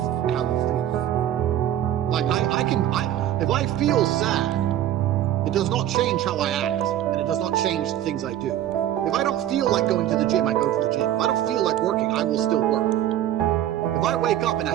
how you feel. Like, if I feel sad, it does not change how I act. And it does not change the things I do. If I don't feel like going to the gym, I go to the gym. If I don't feel like working, I will still work. If I wake up in a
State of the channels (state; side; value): quieter; left; 12.0 dB